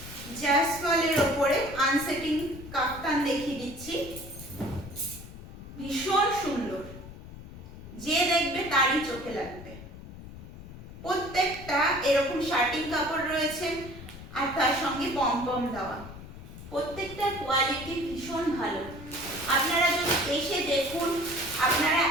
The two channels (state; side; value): noise; left; rumble, 14 dB below the sound